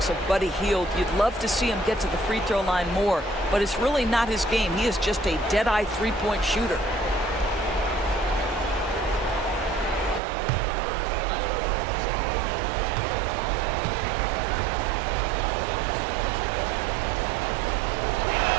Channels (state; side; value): drops out; left; at 10.2 s